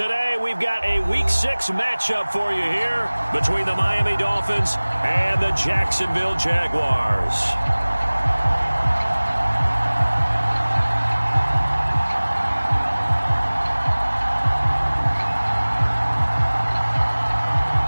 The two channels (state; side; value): inverted; both; correlation -1.00